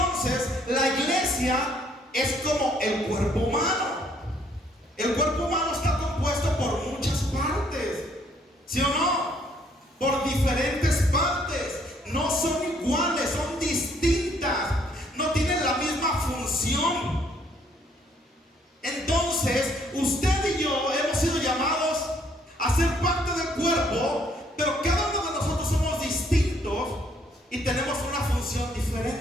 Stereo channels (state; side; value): normal; both; correlation 0.66